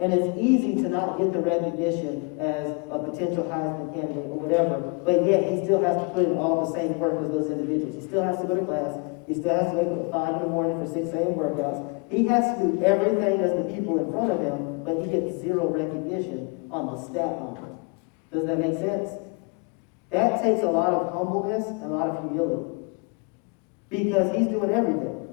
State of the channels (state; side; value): quieter; right; 31.6 dB